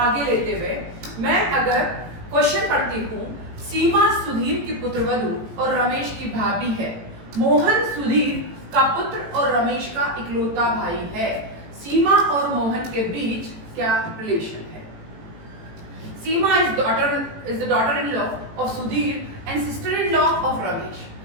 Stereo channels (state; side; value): late; left; 18 ms